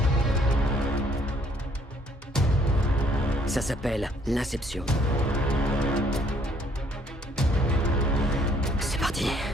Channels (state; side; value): normal; both; correlation 0.64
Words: Ça s'appelle l'inception. C'est parti.